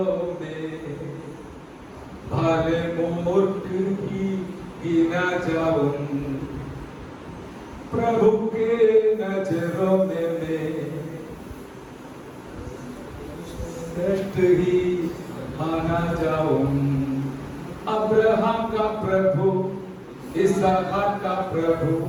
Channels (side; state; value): both; identical; correlation 1.00